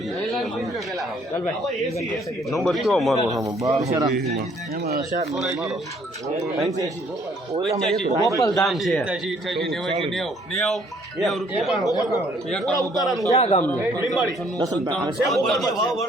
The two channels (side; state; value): both; normal; correlation 0.63